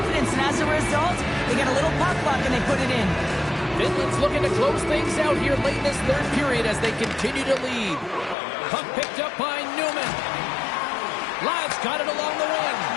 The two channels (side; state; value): right; drops out; at 8.3 s